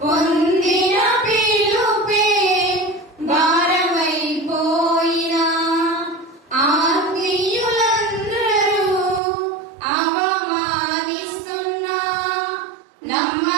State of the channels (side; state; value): left; drops out; at 9.2 s